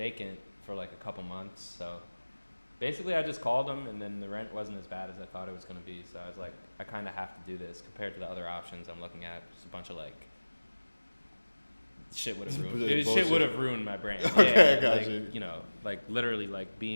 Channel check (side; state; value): both; inverted; correlation -1.00